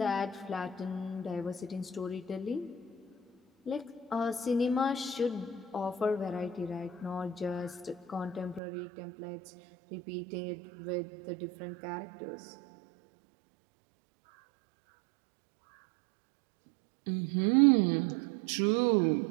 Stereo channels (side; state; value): left; drops out; at 8.6 s